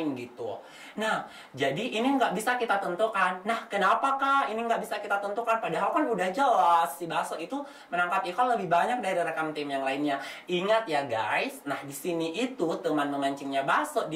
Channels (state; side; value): identical; both; correlation 1.00